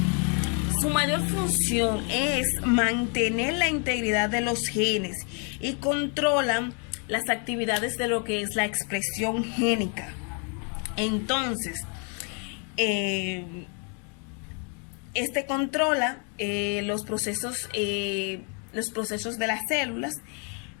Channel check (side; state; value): right; quieter; 38.5 dB